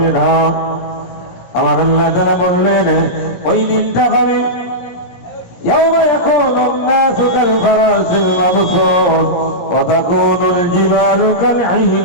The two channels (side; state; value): right; late; 17 ms